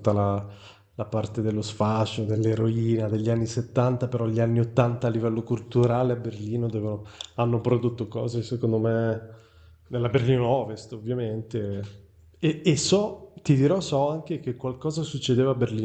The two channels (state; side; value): identical; both; correlation 1.00